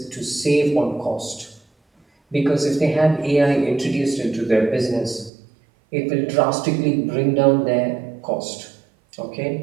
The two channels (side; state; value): left; drops out; at 5.3 s